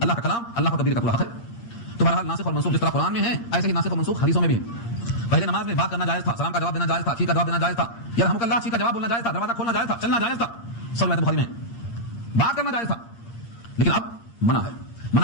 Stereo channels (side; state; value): right; late; 8.6 ms